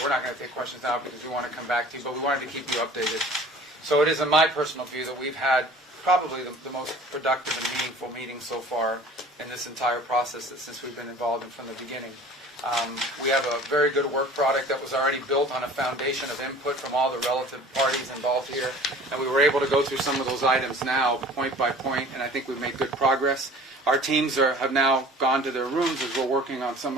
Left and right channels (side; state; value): both; normal; correlation 0.45